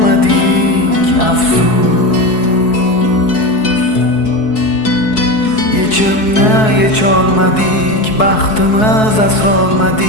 afsus. Yechimni yecholmadik, baxtimiz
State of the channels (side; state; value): right; late; 4.7 ms